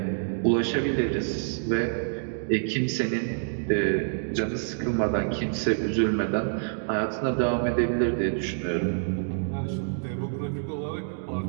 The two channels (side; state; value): left; silent; digital silence